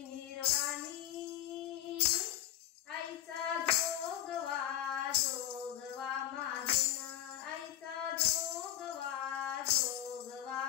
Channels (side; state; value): right; quieter; 12.4 dB